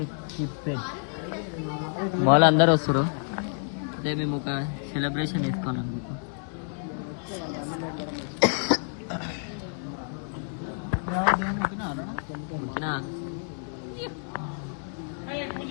to keep it. Mall అందరూ వస్తారు. అదే మేము ఒక సెలబ్రేషన్ తీసుకోవాలనుకుంటున్నాం.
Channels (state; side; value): silent; right; 59 dB below the other